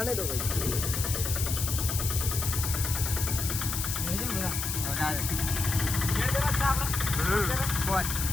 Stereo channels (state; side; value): noise; left; hiss, 3 dB below the sound